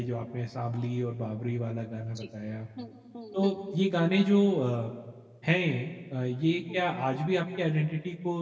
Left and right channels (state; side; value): identical; both; correlation 1.00